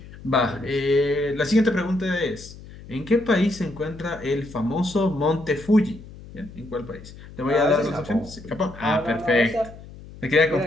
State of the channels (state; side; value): noise; left; hum, 17 dB below the sound